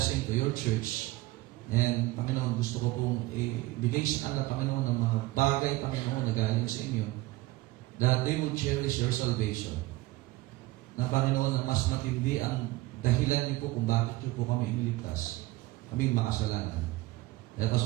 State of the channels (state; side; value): quieter; left; 19.0 dB